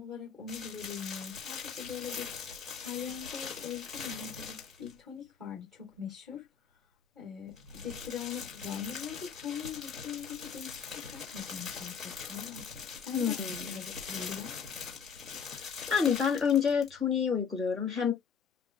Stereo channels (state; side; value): quieter; right; 6.7 dB